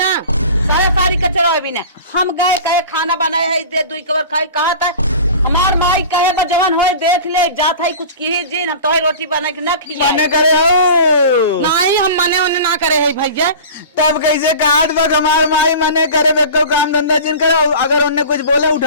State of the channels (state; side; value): inverted; both; correlation -0.37